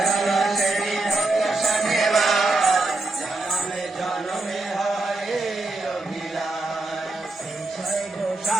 সেবী ভক্ত শনিবার, জনমে জনমে হয় অভিলাষ। ছয়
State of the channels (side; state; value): left; quieter; 3.0 dB